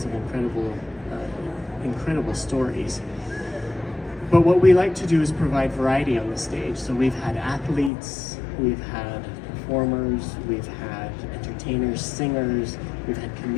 incredible stories. But what we like to do is provide variety on the stage. So we've had athletes, we've had performers, we've had entertainers, singers, we've had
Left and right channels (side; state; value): right; drops out; at 7.9 s